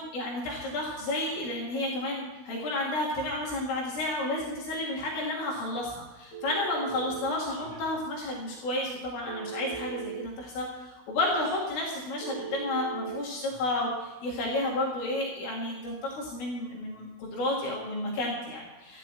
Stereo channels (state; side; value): late; right; 16 ms